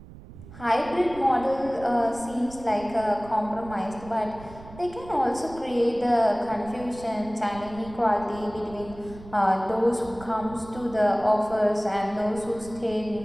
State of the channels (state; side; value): noise; right; rumble, 17 dB below the sound